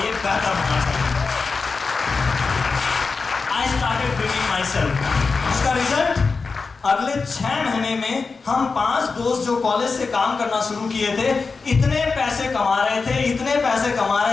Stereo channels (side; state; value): right; quieter; 4.5 dB